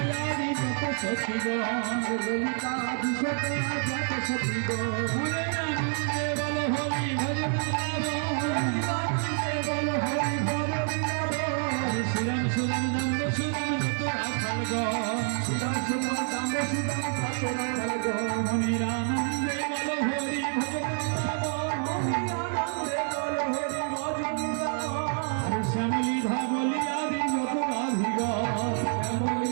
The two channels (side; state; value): left; silent; 57 dB below the other